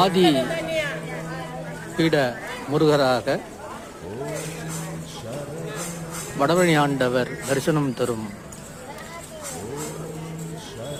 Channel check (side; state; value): both; identical; correlation 1.00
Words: பீட முருகராக வடபழனி ஆண்டவர் தரிசனம் தரும்